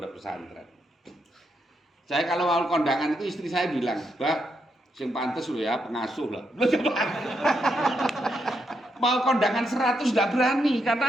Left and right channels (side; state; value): both; normal; correlation 0.80